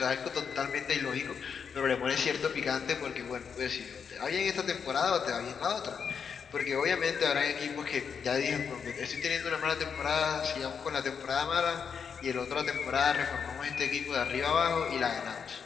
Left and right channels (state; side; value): quieter; right; 6.6 dB